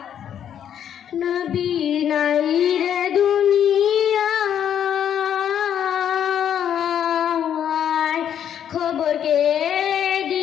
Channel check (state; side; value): quieter; right; 9.4 dB